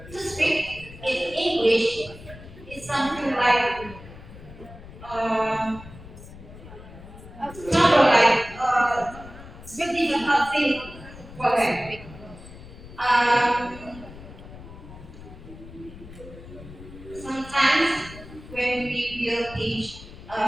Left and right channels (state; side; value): noise; left; rumble, 16 dB below the sound